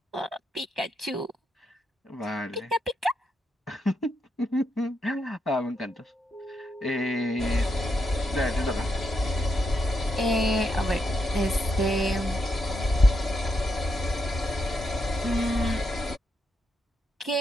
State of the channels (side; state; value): both; normal; correlation 0.82